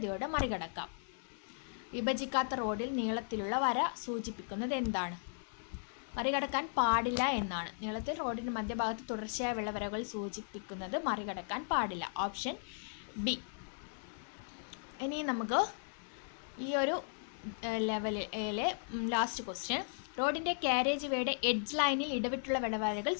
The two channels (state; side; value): silent; right; 53 dB below the other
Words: മറികടക്കാം. വിഭജിക്കാത്ത റോഡിൽ നീളത്തിലുള്ള വര സൂചിപ്പിക്കുന്നത് എന്താണ്? മറികടക്കാൻ പാടില്ല എന്നാണ്. നീളത്തിൽ റോഡിൻ്റെ മധ്യഭാഗത്ത് തുടർച്ചയായ വെള്ളവരകൾ സൂചിപ്പിക്കുന്നത് മറികടക്കാൻ പാടില്ല. Option B. ഇനി നമുക്ക് ഈ ഒരു ലെവലിലെ ലാസ്റ്റ് ക്വസ്റ്റ്യൻ. റോഡിൻ്റെ കാരേജ് വേയുടെ എഡ്ജ് ലൈനിൽ ഇടവിട്ടുള്ള വെള്ളവരകൾ